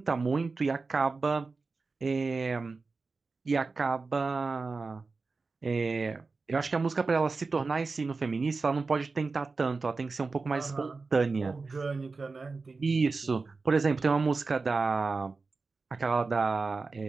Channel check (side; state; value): left; quieter; 4.1 dB